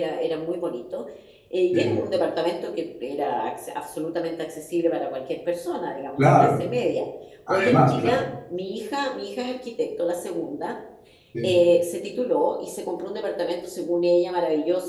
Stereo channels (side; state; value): both; identical; correlation 1.00